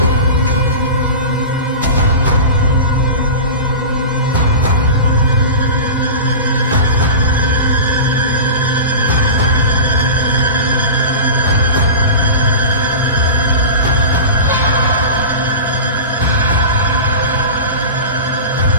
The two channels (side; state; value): both; inverted; correlation -0.30